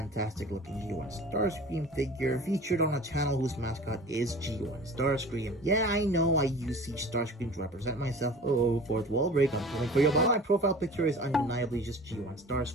looking G1 Starscream figure featured on a channel whose mascot is G1 Starscream. Yeah, I know I use Siege Starscream to represent myself. Oh, fourth wall break, I'm pulling for you, but my profile picture is undeniably just G1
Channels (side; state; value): both; normal; correlation 0.41